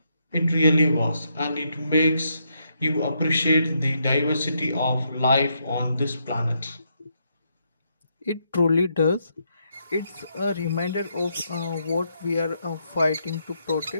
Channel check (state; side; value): inverted; both; correlation -0.78